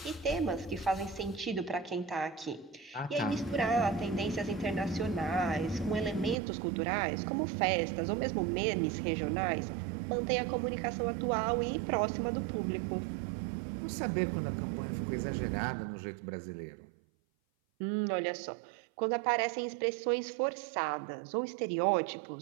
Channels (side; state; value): left; drops out; at 6.4 s